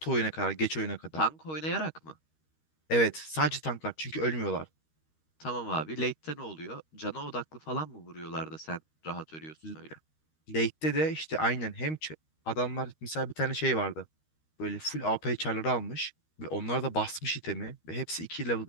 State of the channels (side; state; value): right; late; 13 ms